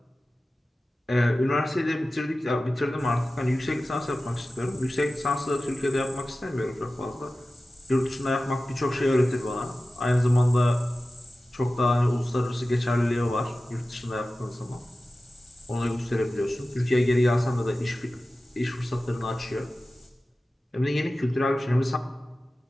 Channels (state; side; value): normal; both; correlation 0.95